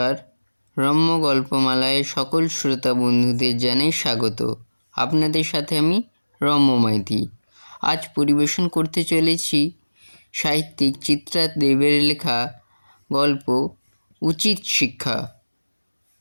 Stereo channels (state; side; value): inverted; both; correlation -1.00